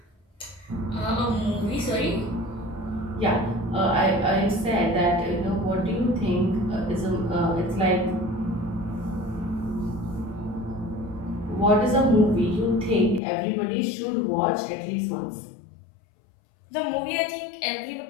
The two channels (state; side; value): drops out; right; at 13.2 s